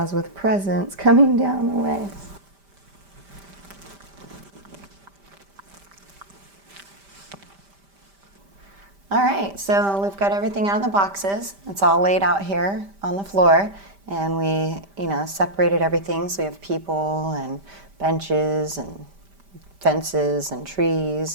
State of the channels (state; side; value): late; left; 5.1 ms